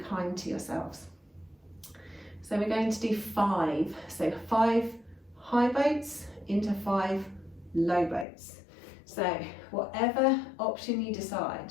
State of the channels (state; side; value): drops out; right; at 8.2 s